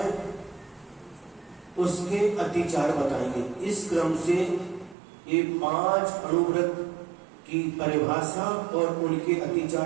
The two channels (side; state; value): left; drops out; at 5.0 s